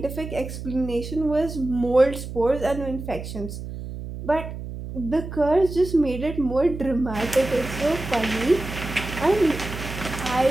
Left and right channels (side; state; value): right; noise; hum, 9 dB below the sound